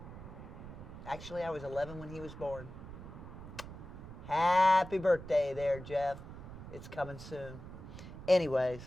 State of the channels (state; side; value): noise; right; rumble, 12 dB below the sound